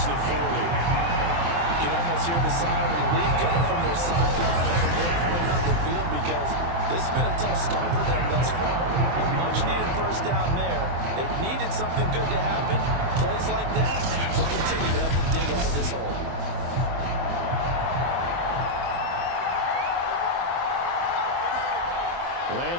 the 40. You can almost hear the sigh of relief coming from their sideline at the midpoint on the field because this has been a tough start for them thus far. A much-needed first down there. They needed something good to happen. Plays like that will continue to help them dig out of this hole.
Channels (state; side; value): late; left; 23 ms